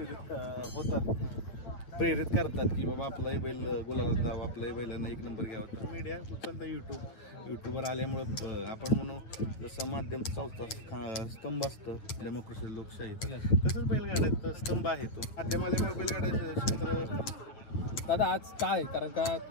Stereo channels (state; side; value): late; right; 9.2 ms